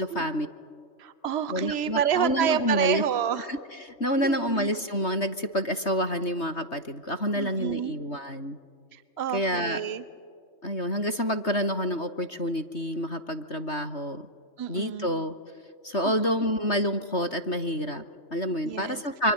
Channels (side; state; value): right; late; 3.2 ms